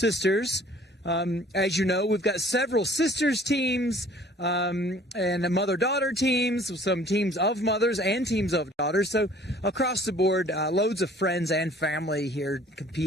As you know, we've got several sisters teams and mother-daughter teams, some teams of mothers and teams of daughters. So across the board, loads of friends and family here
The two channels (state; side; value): normal; both; correlation 0.53